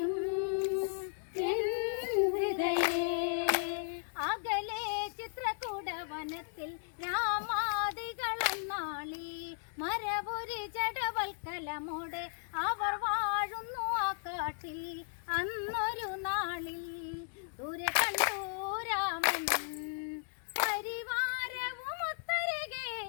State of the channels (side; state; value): right; silent; digital silence